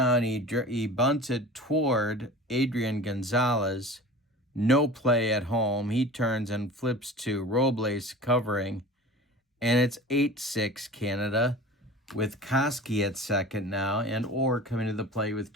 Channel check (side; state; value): both; normal; correlation 0.38